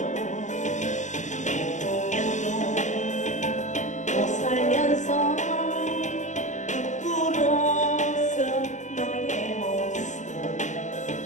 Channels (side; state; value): right; late; 0.35 ms